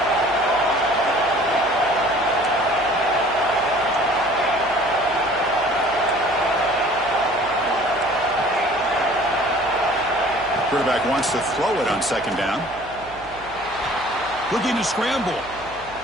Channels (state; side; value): noise; right; hum, 21 dB below the sound